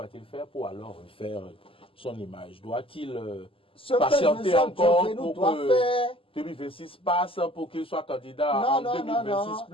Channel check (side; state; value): right; late; 0.26 ms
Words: il faire pour alors refaire son image? Doit-il patienter encore pour que 2026 passe pour qu'il soit candidat en 2026